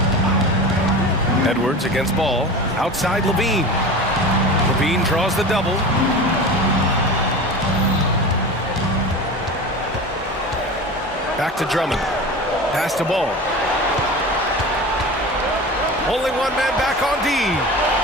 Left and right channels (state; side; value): normal; both; correlation 0.32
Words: Edwards against Ball. Outside LaVine. LaVine draws the double. Back to Drummond. Pass to Ball. Only one man back on D.